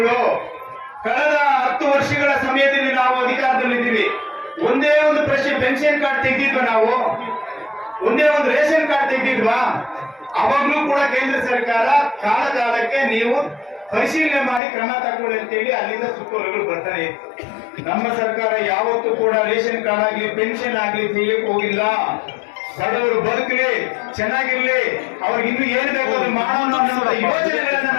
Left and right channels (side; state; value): right; drops out; at 14.6 s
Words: ಕಳೆದ 10 ವರ್ಷಗಳ ಸಮಯದಲ್ಲಿ ನಾವು ಅಧಿಕಾರದಲ್ಲಿದ್ದೀವಿ. ಒಂದೇ ಒಂದು ಪೆನ್ಷನ್ ಕಾರ್ಡ್ ತೆಗೆದಿದ್ವಾ? ನಾವು ಒಂದೇ ಒಂದು ರೇಷನ್ ಕಾರ್ಡ್ ತೆಗೆದಿದ್ವಾ? ಅವಾಗ್ಲೂ ಕೂಡ ಕೇಂದ್ರ ಸರ್ಕಾರ ಕಾಲಕ್ಕೆ ನೀವು ಪರಿಶೀಲನೆ ಮಾಡಿ ಕ್ರಮ ತಗೊಳ್ಳಿ ಅಂತೇಳಿ ಅಲ್ಲಿಂದ ಸುತ್ತೋಲೆಗಳು ಬರ್ತಾನೆ ಇತ್ತು. ನಮ್ಮ ಸರ್ಕಾರ ಯಾವತ್ತೂ ಕೂಡ ರೇಷನ್ ಕಾರ್ಡ್ ಆಗ್ಲಿ, ಪೆನ್ಷನ್ ಆಗ್ಲಿ ತೆಗಿಯಕ್ಕೆ ಹೋಗಿಲ್ಲ. ಬಡವರು ಬದುಕಲಿ, ಚೆನ್ನಾಗಿರ್ಲಿ, ಅವ್ರಿಗೆ ಇನ್ನು ಏನ್ ಬೇಕು ಅದು ಮಾಡೋಣ ಅನ್ನೋ ಯೋಜನೆಗಳನ್ನ